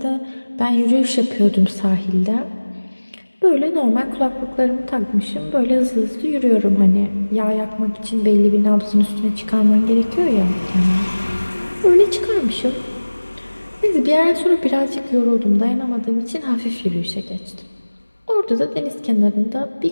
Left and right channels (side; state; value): both; inverted; correlation -1.00